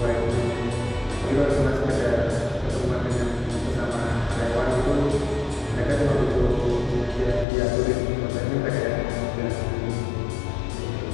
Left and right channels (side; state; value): right; drops out; at 7.5 s